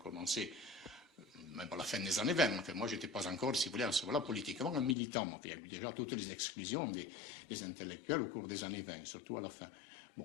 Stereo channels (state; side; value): drops out; right; at 5.0 s